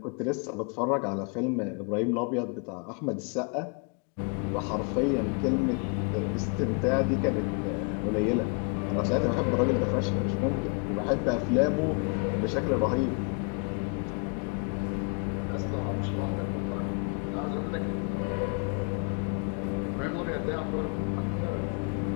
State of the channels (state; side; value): quieter; right; 37.3 dB